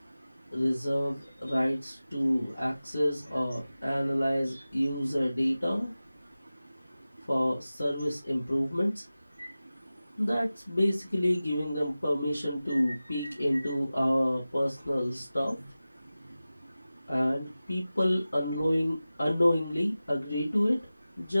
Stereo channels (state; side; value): inverted; both; correlation -0.96